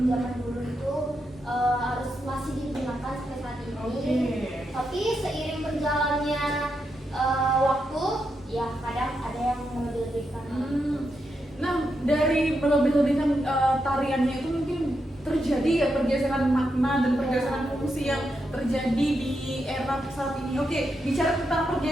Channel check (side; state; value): both; normal; correlation 0.84